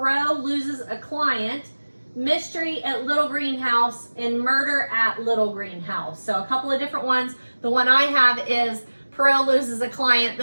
Loses a Client, Mystery at Little Green House, and Murder at Little Green House. So a couple of different ones. The one I have is Poirot Loses a Client.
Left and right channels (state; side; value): inverted; both; correlation -1.00